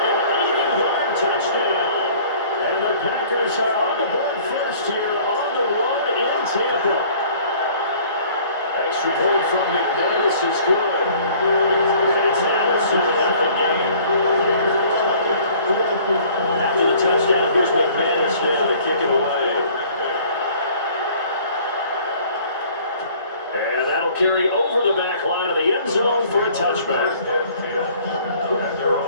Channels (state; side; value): inverted; both; correlation -0.53